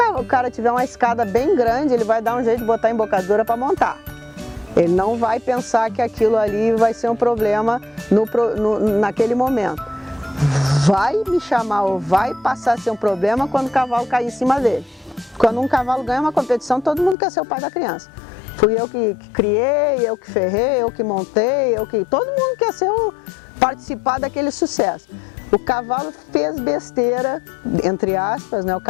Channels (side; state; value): right; drops out; at 17.2 s